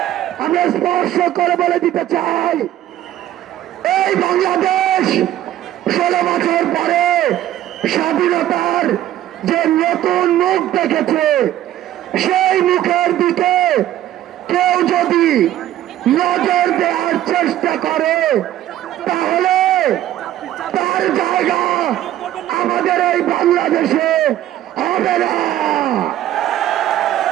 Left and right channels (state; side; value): quieter; left; 12.8 dB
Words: আমরা স্পর্শ করে বলে দিতে চাই, এই বাংলাদেশ 16 বছর পরে স্বাধীনতার যে নতুন মুখ দেখেছে, সেই মুখের দিকে কেউ যদি নজর দেওয়ার চেষ্টা করে, তাহলে তার জায়গা আমাদের এই বাংলাদেশে হবে না।